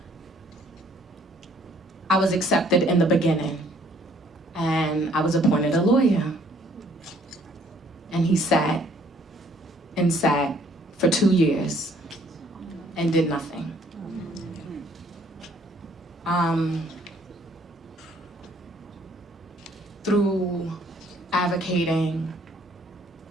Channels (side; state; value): both; normal; correlation 0.62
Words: I was accepted in the beginning, and I was appointed a lawyer. And he sat and sat for 2 years and did nothing. Through advocating